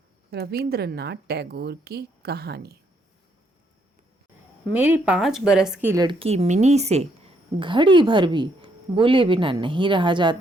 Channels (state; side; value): normal; both; correlation 0.73